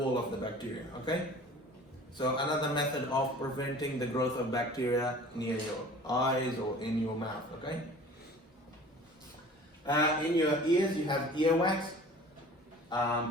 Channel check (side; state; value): both; normal; correlation 0.45